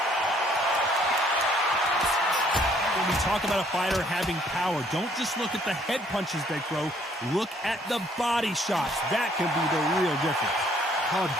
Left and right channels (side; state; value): both; normal; correlation 0.63